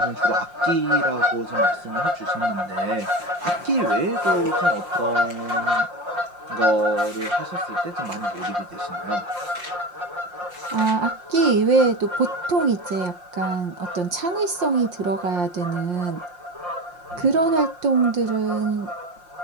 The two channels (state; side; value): late; left; 5.7 ms